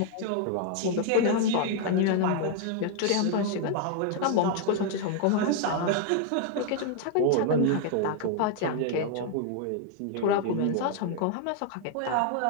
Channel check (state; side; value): different; both; correlation 0.00